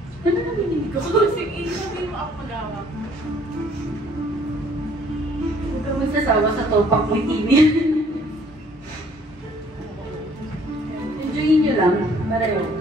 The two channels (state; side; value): normal; both; correlation 0.59